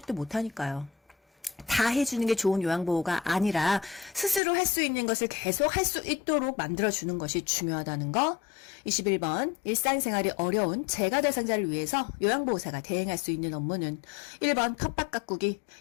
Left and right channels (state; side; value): drops out; right; at 4.4 s